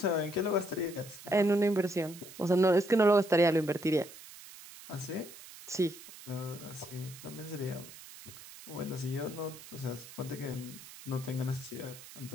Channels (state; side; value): noise; right; hiss, 17 dB below the sound